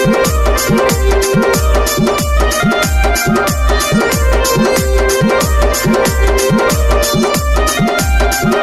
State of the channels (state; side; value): identical; both; correlation 1.00